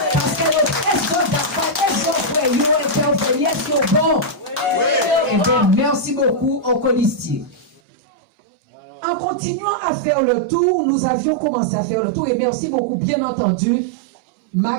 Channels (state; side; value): drops out; left; at 7.8 s